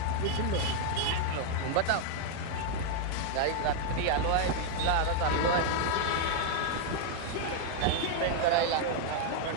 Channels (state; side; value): different; both; correlation 0.00